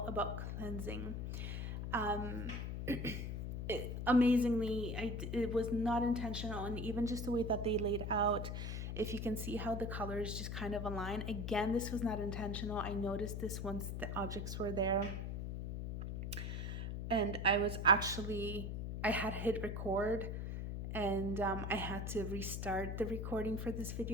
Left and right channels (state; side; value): noise; left; hum, 3 dB below the sound